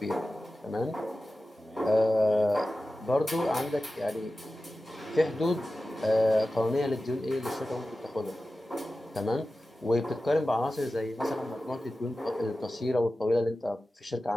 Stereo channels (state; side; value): normal; both; correlation 0.94